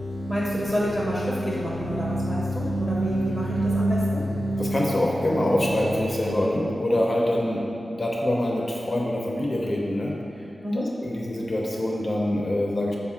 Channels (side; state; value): both; normal; correlation 0.93